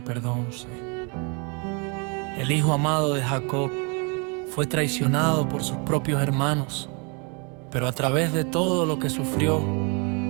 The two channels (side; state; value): left; quieter; 33.9 dB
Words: El hijo amado de Jacob fue traicionado por sus propios hermanos, pero a través de todo lo que sufrió,